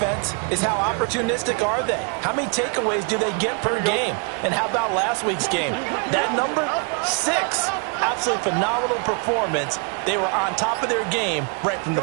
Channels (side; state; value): left; quieter; 37.7 dB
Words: is how opportunistic are they? How many takeaways do they get per game? And how about last week's game? That number? 6. Absolutely phenomenal performance. They were on top of their game right from the